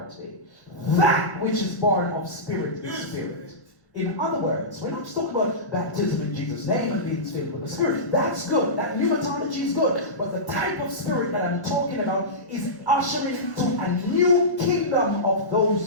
today. That which is born of spirit is spirit. In other words, we're not just talking about baptism in Jesus' name and being filled with the Spirit. That's good. That pneumatology is good. But the type of spirit that I'm talking about is ushering to a new kingdom of those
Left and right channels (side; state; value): both; normal; correlation -0.17